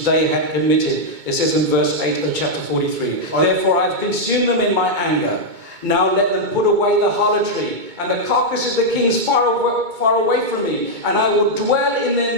they had committed. It says in verse 8 of chapter 43. Therefore I have consumed them in my anger. Now let them put away the harlotry and the carcasses of the kings far away from me, and I will dwell in their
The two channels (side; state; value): left; late; 2.2 ms